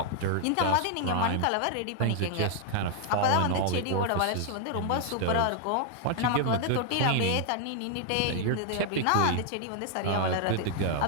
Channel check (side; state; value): both; different; correlation 0.00